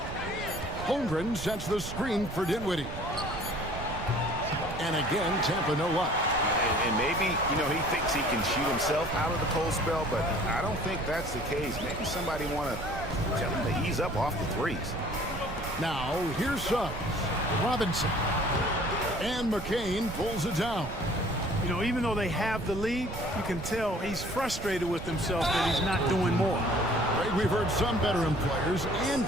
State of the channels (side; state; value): right; noise; rumble, 9 dB below the sound